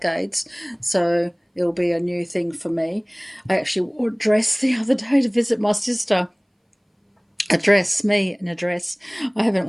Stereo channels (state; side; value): identical; both; correlation 1.00